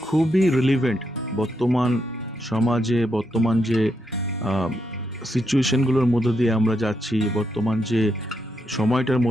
খুবই রিলিভেন্ট বর্তমান সমাজে, বর্তমান যে সিচুয়েশনগুলোর মধ্যে দিয়ে আমরা যাচ্ছি, বর্তমান যে সময়টার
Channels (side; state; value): both; normal; correlation 0.81